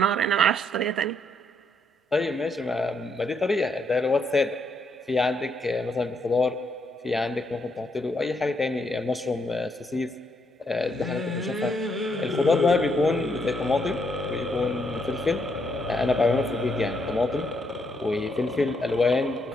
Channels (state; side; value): normal; both; correlation 0.75